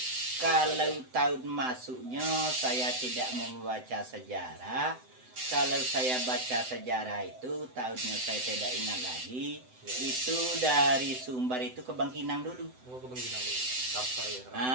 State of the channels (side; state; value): left; late; 7.9 ms